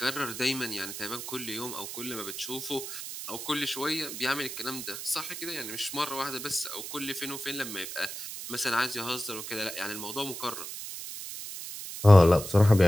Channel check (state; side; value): noise; right; hiss, 8 dB below the sound